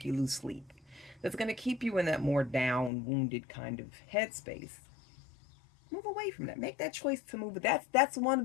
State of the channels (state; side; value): drops out; right; at 2.9 s